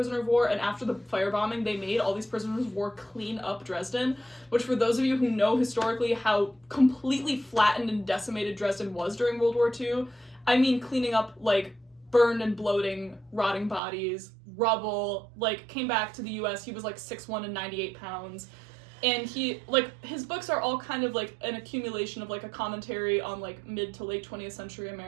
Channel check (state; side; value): drops out; left; at 13.8 s